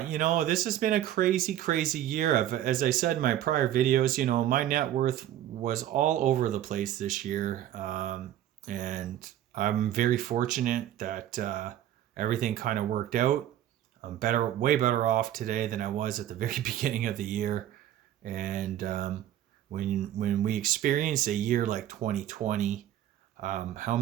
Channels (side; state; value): left; quieter; 12.0 dB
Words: This has been a crazy, crazy year. As I said in my prior videos, my net worth was all over the place this year. And I'm very fortunate that everything kind of worked out. I'm way better off today than I was at the very beginning of the year. And when we experience a year like 2020, how